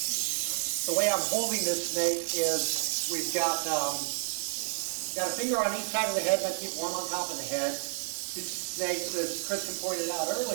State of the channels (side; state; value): left; silent; digital silence